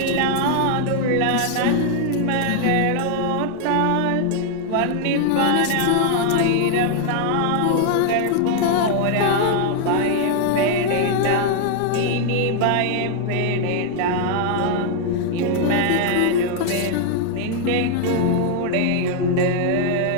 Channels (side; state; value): both; different; correlation 0.00